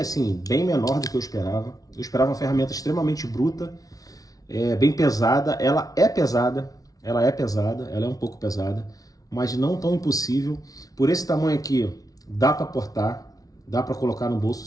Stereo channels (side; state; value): right; late; 0.18 ms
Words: bem menor do que eu esperava. Eu esperava uma ferramenta extremamente bruta, bem pesada. Ela é pesada, ela é um pouco pesada, mas não tão impossível. Por esse tamanho aqui, dá para portar, dá para colocar no bolso